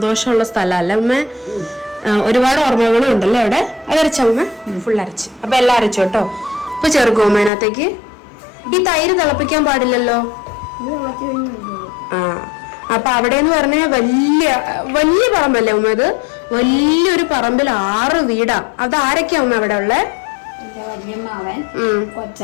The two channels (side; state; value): right; drops out; at 7.5 s